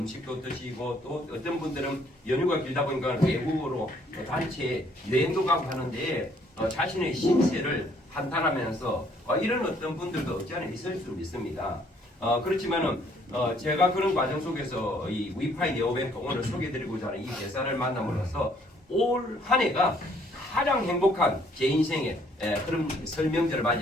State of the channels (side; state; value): both; normal; correlation 0.64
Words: 드시고 또 어떤 분들은 연휴가 길다 보니까 외국으로 단체 여행도 가고 하는데 자신의 신세를 한탄하면서 이런 어떤 분들도 없지 않아 있을 수 있습니다. 그렇지만은 제가 그런 과정 속에서 이 위파이 네오뱅크 오늘 소개드리고자 하는 이 대사를 만남으로써 올 한 해가 가장 행복한 제 인생의 그런 설명절을